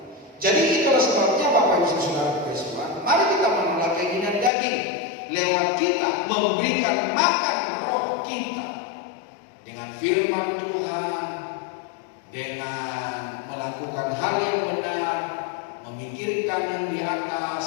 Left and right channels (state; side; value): drops out; right; at 4.5 s